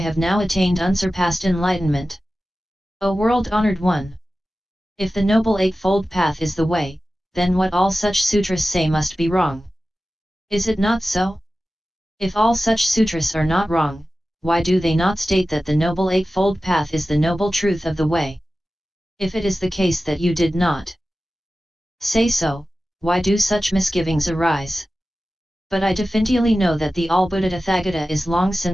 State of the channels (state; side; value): normal; both; correlation 0.95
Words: have now attained unsurpassed enlightenment. O world-honored one! If the Noble Eightfold Path is the way, then what all such sutras say must be wrong. Is it not so? If all such sutras are not wrong, why do they not state that the Noble Eightfold Path is the noble truth of the way? If it is the case that you did not say so, why do such misgivings arise? But I definitely know that the all-Buddha Tathagata is long